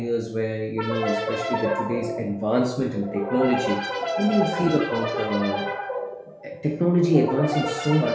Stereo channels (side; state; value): both; identical; correlation 1.00